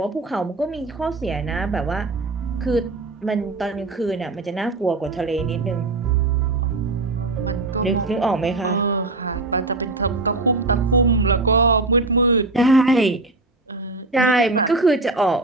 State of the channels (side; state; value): left; quieter; 3.1 dB